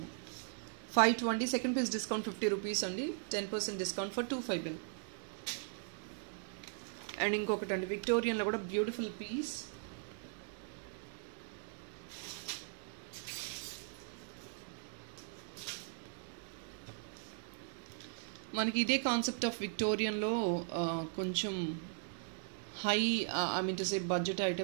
520 సెకండ్ పీస్ డిస్కౌంట్ 50 రూపీస్ అండి. 10% డిస్కౌంట్ ఫర్ 250. అండ్ ఇంకొకటి అండి విక్టోరియన్లో కూడా బ్యూటిఫుల్ పీస్. మనకి ఇదే కాన్సెప్ట్ ఆఫ్ విక్టోరియన్లో కొంచెం high I mean to say budget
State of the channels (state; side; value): silent; left; digital silence